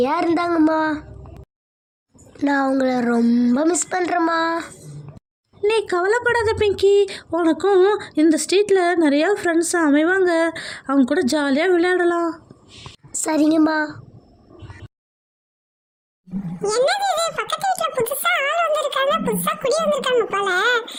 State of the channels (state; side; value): identical; both; correlation 1.00